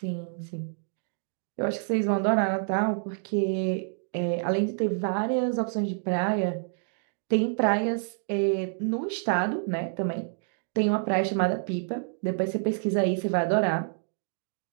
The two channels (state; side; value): silent; left; 59 dB below the other